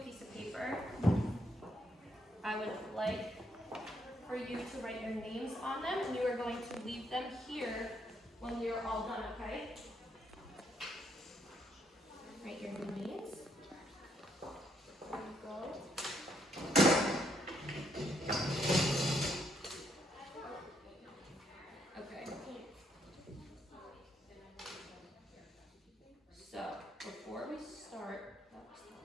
piece of paper. I would like for you to write your names on them, and you are going to leave them here when we are all done, okay? Write your names. There you go. Okay. So, before we start,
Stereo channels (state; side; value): normal; both; correlation 0.73